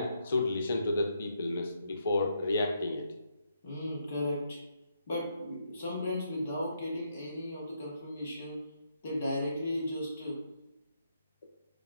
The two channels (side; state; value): both; inverted; correlation -0.78